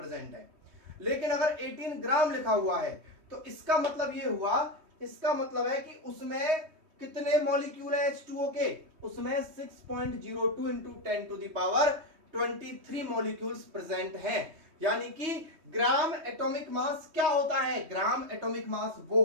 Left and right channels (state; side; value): late; left; 3.2 ms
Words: है। लेकिन अगर 18 ग्राम लिखा हुआ है तो इसका मतलब ये हुआ, इसका मतलब है कि उसमें कितने मॉलिक्यूल है H2O के? उसमें 6.02 × 10⁻23 मॉलिक्यूल्स प्रेजेंट हैं। यानी कि ग्राम एटॉमिक मास क्या होता है? ग्राम एटॉमिक मास वो